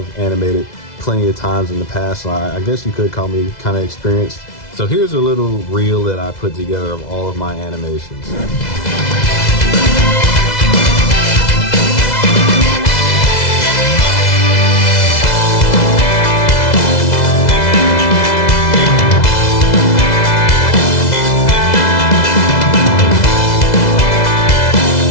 animated plenty of times in the past, so I guess you could call me kind of experienced. So here's a little reel that I put together of all of my animations.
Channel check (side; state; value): right; late; 2.0 ms